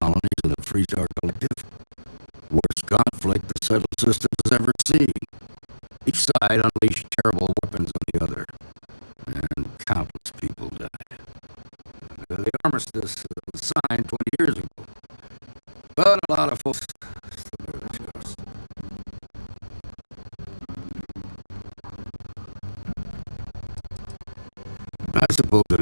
Colonies and the Freestar Collective, worst conflict the settled systems has ever seen. Each side unleashed terrible weapons on the other, and countless people died. The armistice was signed 20 years ago, but a lot of folks still bear the scars. I suppose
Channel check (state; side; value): inverted; both; correlation -1.00